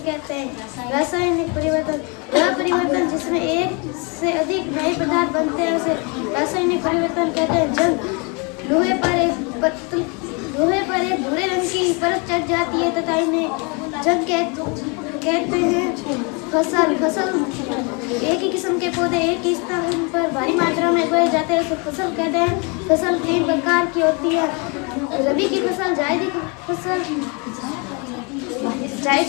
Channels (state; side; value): quieter; right; 32.3 dB